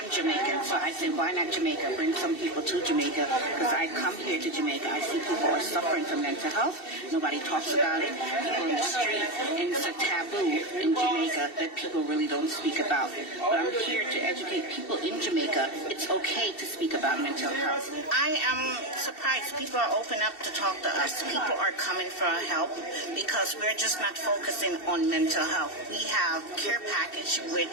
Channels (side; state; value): right; late; 2.7 ms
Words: Jamaican, so I said, why not Jamaica? Bring some people to Jamaica, because I come here to Jamaica. I see people are suffering from mental health. Nobody talks about it. People in the street, and it's a taboo in Jamaica that people really don't speak about. But I'm here to educate people in Jamaica. It's okay to speak about mental health. I am surprised people are open up to talk to us. People are coming for help because we're just not focusing on mental health. We have care package,